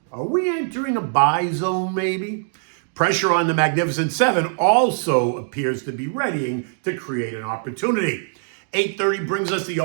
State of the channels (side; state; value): left; silent; digital silence